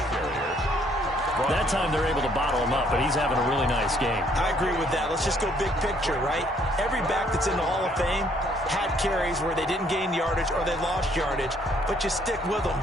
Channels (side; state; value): both; normal; correlation 0.65